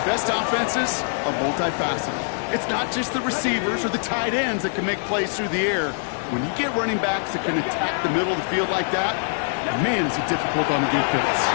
best offenses are multifaceted. It's not just the receivers or the tight ends that can make plays through the air. When you get running backs that can attack the middle of the field like that, man, is it difficult on the defense.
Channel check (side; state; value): right; silent; 63 dB below the other